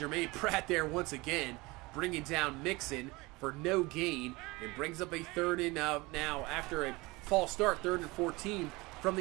Pratt there once again, bringing down Mixon for no gain, and brings up a 3rd and now after a false start, 3rd and 14 from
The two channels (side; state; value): left; quieter; 23.2 dB